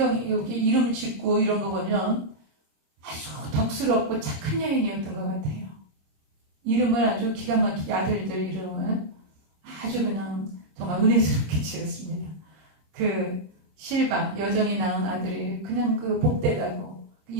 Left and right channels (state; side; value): late; left; 26 ms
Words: 여기 이름 짓고 이런 거 보면 아주 덕스럽고 착한 여인이었던 것 같아요. 이름을 아주 기가 막히게 아들들 이름을 아주 그냥 정말 은혜스럽게 지었습니다. 그 실바 여정이 낳은 아들이 그냥 그 복되다고